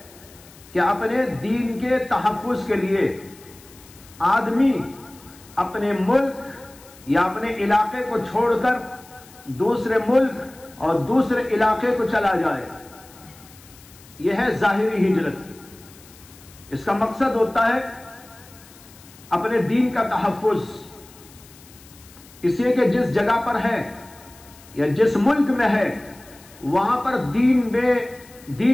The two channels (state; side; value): noise; left; hiss, 23 dB below the sound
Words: کہ اپنے دین کے تحفظ کے لیے آدمی اپنے ملک یا اپنے علاقے کو چھوڑ کر دوسرے ملک اور دوسرے علاقے کو چلا جائے، یہ ہے ظاہری ہجرت۔ اس کا مقصد ہوتا ہے اپنے دین کا تحفظ، اس لیے کہ جس جگہ پر ہے یا جس ملک میں ہے وہاں پر